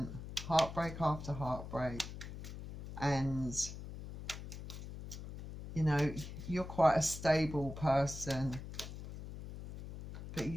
heartbreak after heartbreak. And you know, you're quite a stable person, but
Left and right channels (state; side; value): noise; left; hum, 10 dB below the sound